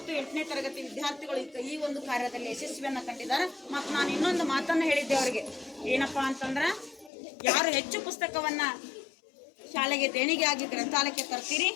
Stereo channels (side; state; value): right; drops out; at 7.1 s